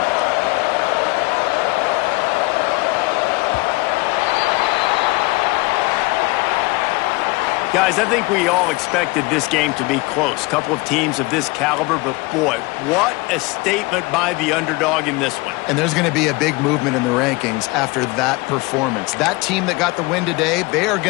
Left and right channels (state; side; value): quieter; right; 24.0 dB